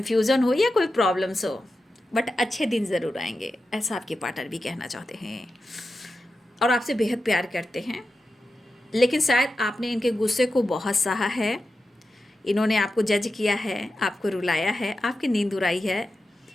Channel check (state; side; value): normal; both; correlation 0.91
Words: हो या कोई प्रॉब्लम्स हो, बट अच्छे दिन ज़रूर आएंगे, ऐसा आपके पार्टनर भी कहना चाहते हैं और आपसे बेहद प्यार करते हैं। लेकिन शायद आपने इनके गुस्से को बहुत सहा है, इन्होंने आपको जज किया है, आपको रुलाया है, आपकी नींद उड़ाई है।